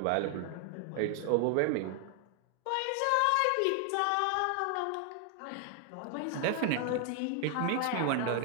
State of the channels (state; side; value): different; both; correlation 0.00